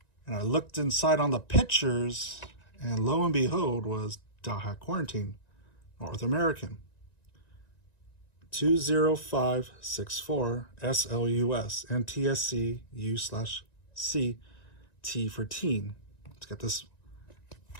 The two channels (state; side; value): late; right; 1.9 ms